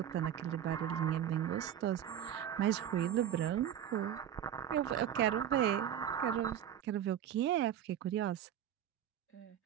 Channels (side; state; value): left; quieter; 10.1 dB